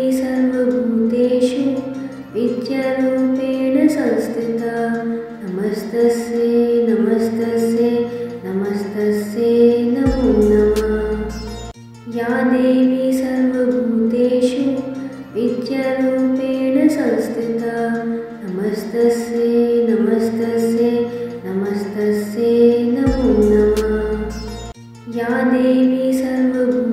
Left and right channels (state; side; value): identical; both; correlation 1.00